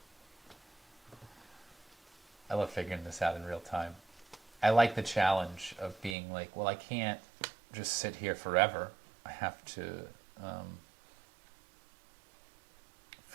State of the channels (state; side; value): drops out; left; at 6.2 s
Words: I love figuring this out in real time. I like the challenge of being like, well, I can't just sit here forever. I have to